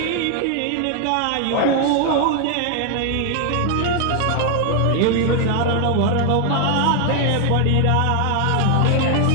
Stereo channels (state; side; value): different; both; correlation 0.00